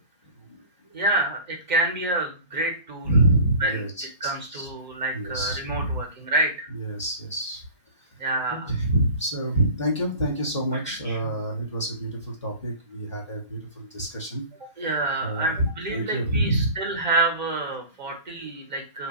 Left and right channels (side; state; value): both; inverted; correlation -0.41